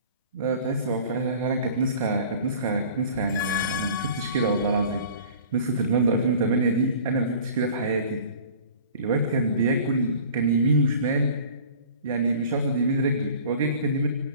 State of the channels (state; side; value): inverted; both; correlation -0.45